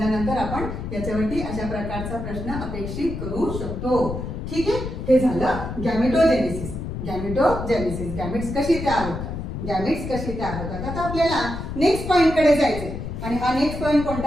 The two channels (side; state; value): left; noise; rumble, 6 dB below the sound